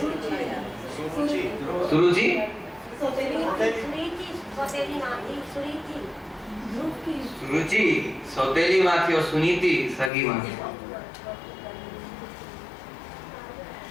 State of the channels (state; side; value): drops out; right; at 10.1 s